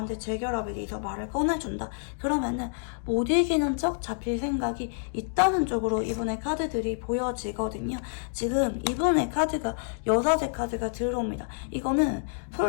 재결합에 대해서 말을 꺼내준다. 그러면은 못 이기는 척 잡힐 생각이 있다는 쪽으로 이분의 카드들이 보여지거든요. 지금 이분의 카드가 여사제 카드가 들어옵니다. 이거는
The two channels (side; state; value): right; silent; digital silence